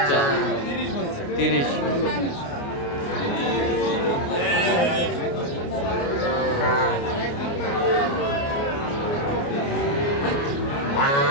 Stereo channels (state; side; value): late; right; 29 ms